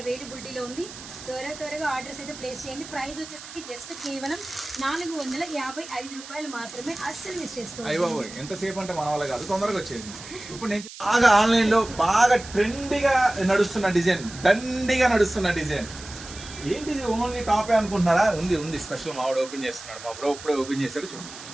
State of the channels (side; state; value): right; noise; hiss, 14 dB below the sound